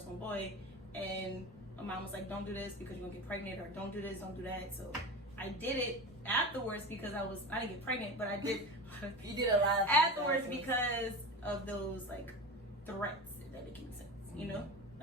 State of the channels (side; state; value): both; normal; correlation 0.28